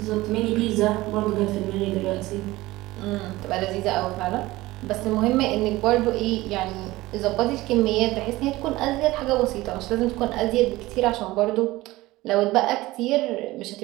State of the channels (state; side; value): quieter; left; 18.6 dB